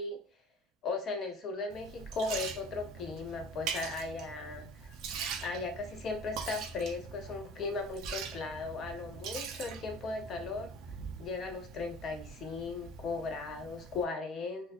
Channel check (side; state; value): both; normal; correlation 0.44